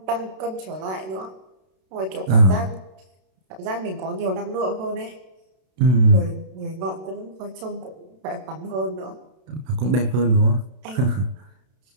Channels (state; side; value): late; left; 32 ms